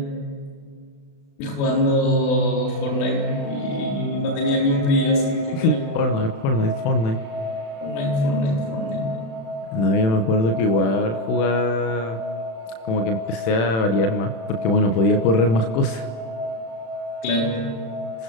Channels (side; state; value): right; late; 36 ms